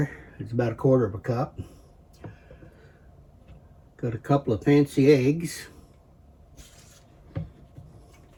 It's about 1/4 cup. Got a couple of fancy eggs.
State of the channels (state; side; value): identical; both; correlation 1.00